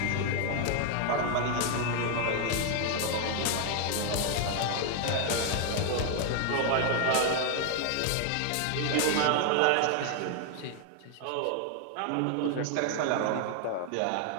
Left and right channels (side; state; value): both; different; correlation 0.00